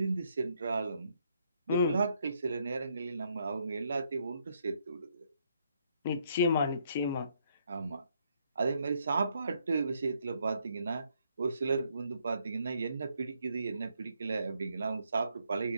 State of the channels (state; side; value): inverted; both; correlation -0.73